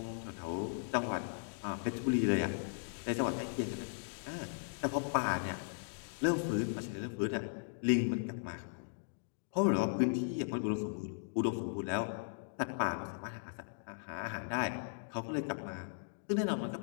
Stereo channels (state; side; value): silent; right; digital silence